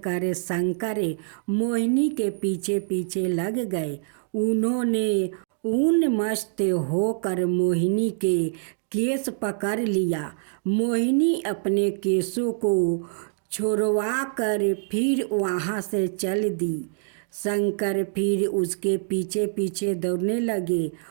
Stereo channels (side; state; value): left; silent; digital silence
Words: कर शंकर मोहिनी के पीछे पीछे लग गए। उन्होंने उन्मस्त होकर मोहिनी के केस पकड़ लिया। मोहिनी अपने केसों को छुड़वा कर फिर वहाँ से चल दी। शंकर फिर उसके पीछे पीछे दौड़ने लगे।